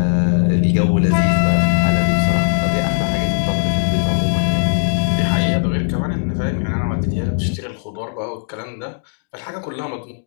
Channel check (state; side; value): silent; right; digital silence